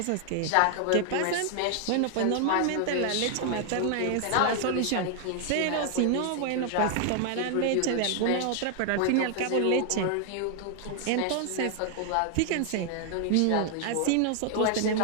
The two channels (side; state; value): both; different; correlation 0.00